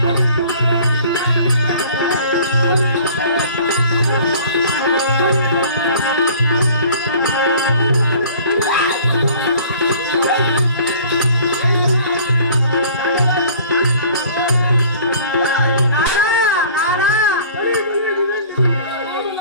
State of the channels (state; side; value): inverted; both; correlation -0.49